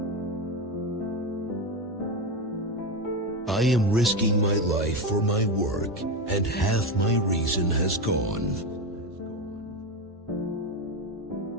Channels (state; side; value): normal; both; correlation 0.15